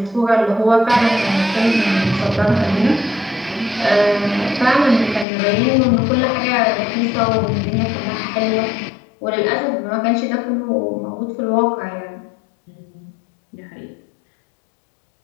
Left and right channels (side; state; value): right; drops out; at 5.2 s